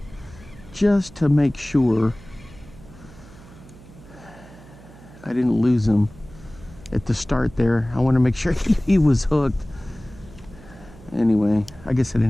Just to make sure I didn't lose him at the start there. I want to make sure he was hooked. Anyway, I guess I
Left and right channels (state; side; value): noise; right; hum, 21 dB below the sound